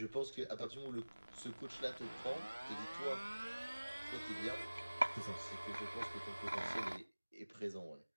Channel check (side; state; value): both; inverted; correlation -1.00